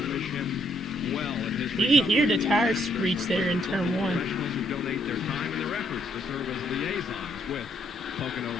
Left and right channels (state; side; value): normal; both; correlation 0.71